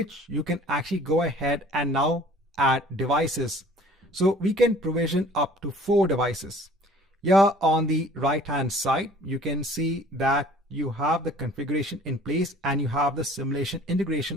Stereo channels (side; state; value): both; normal; correlation 0.51